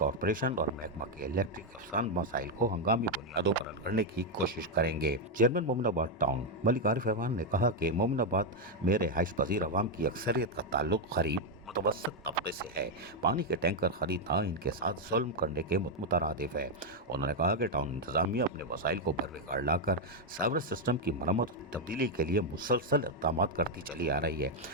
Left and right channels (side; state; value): both; normal; correlation 0.02